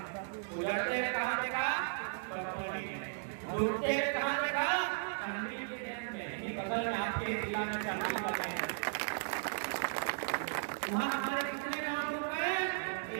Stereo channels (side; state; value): left; silent; digital silence